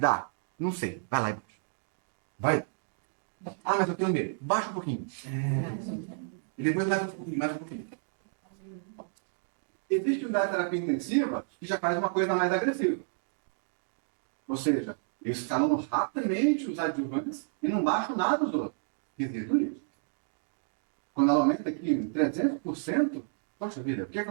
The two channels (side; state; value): left; silent; digital silence